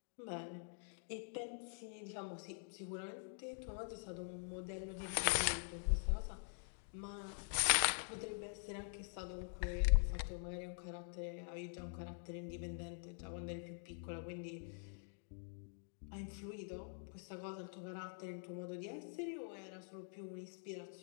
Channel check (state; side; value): silent; right; digital silence